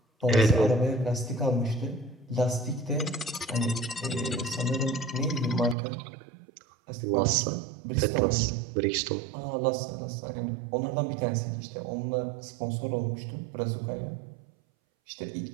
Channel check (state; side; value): drops out; left; at 5.8 s